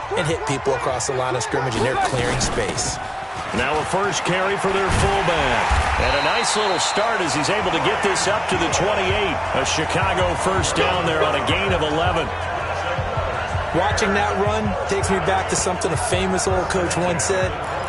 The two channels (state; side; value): identical; both; correlation 1.00